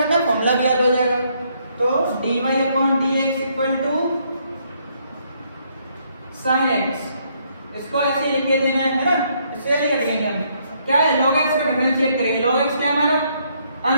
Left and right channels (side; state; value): both; inverted; correlation -0.71